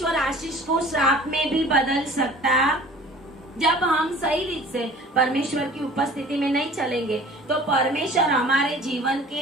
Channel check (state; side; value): normal; both; correlation 0.46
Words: आशीष को श्राप में भी बदल सकता। जब हम सही रीत से परमेश्वर की उपस्थिति में नहीं चलेंगे तो परमेश्वर हमारे जीवन के